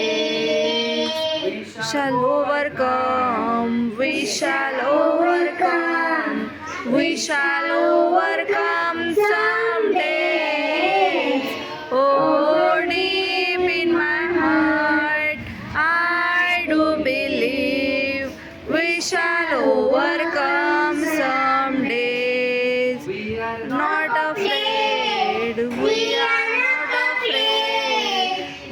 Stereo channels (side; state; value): both; identical; correlation 1.00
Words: Shall overcome, we shall overcome, we shall overcome someday. Oh, deep in my heart, I do believe we shall overcome some days. We are Not afraid, we are not